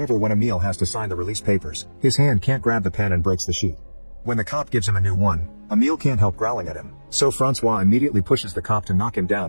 when Emil has to sign the release papers, his hand can't grab the pen and breaks the sheet. When the cop gives him a new one, Emil can't help growling at him, so Francois immediately pushes the cop to knock him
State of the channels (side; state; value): both; inverted; correlation -1.00